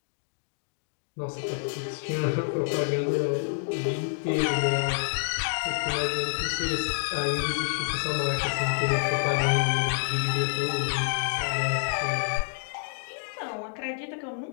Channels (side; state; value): right; silent; digital silence